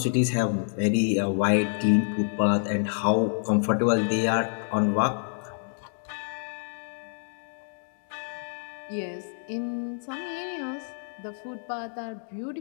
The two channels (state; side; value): silent; right; digital silence